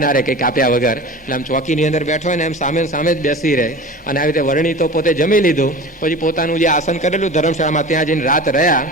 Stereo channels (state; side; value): normal; both; correlation 0.35